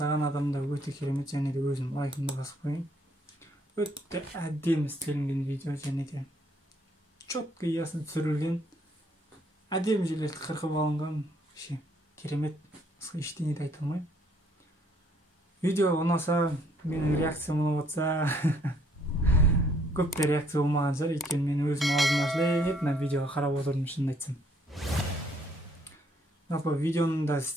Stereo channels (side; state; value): both; normal; correlation 0.66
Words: адам да өте керемет, және де өзім лайкымды басып қояйын. Өте әдемі істелінген видео, және де четко ясно түсірілген, әдемі жерлерді қырқып алынған, керемет. Ештеңе де айта алмаймын. Видео ұнаса, менің реакциям ұнап отса, көпте реакция болмаған шығар, өйткені мен өзім аузым ашылып, мына видеоға қарап отырдым, шынын айтсам. Жалпы видеоны да